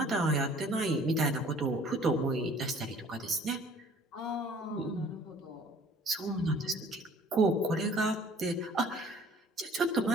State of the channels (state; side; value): normal; both; correlation 0.53